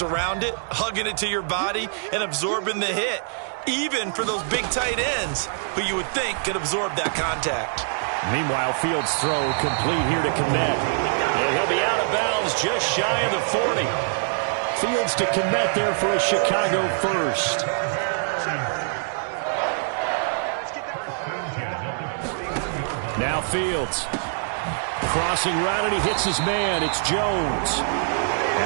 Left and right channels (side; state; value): left; silent; digital silence